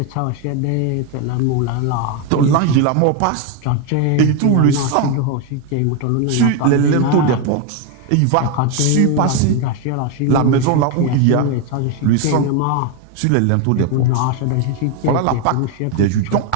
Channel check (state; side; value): different; both; correlation 0.02